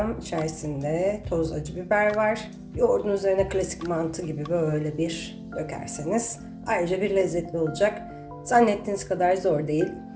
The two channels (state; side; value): identical; both; correlation 1.00